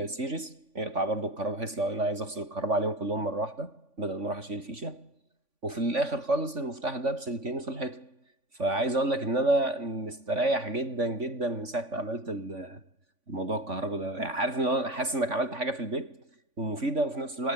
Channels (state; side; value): late; left; 3.5 ms